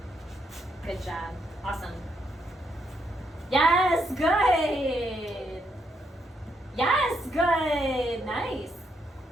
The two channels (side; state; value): both; normal; correlation 0.77